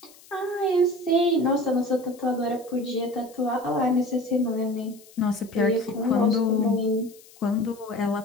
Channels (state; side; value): noise; left; hiss, 24 dB below the sound